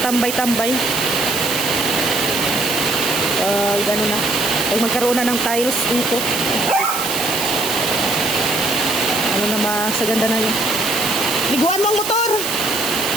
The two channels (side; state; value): right; noise; hiss, 4 dB below the sound